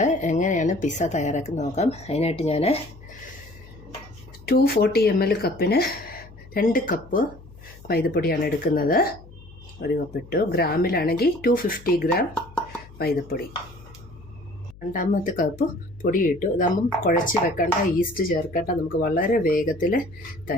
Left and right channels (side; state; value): left; noise; hum, 21 dB below the sound